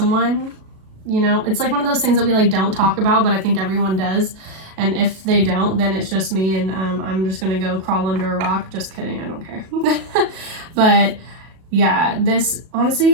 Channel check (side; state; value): left; late; 37 ms